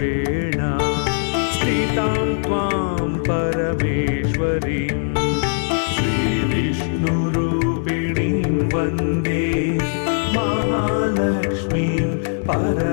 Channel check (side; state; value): right; silent; digital silence